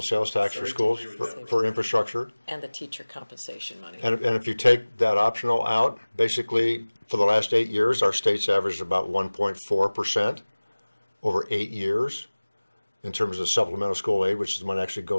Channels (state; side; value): inverted; both; correlation -1.00